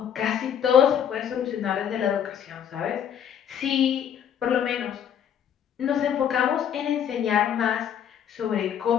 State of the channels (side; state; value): right; quieter; 9.0 dB